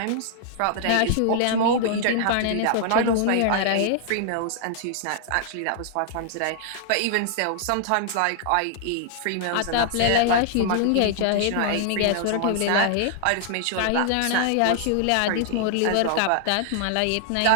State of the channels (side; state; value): both; different; correlation -0.01